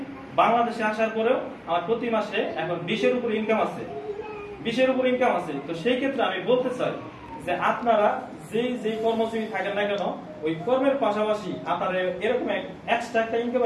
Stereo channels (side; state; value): both; identical; correlation 1.00